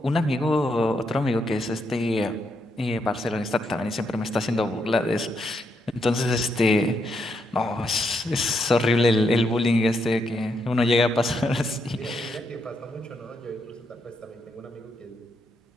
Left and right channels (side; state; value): both; normal; correlation 0.79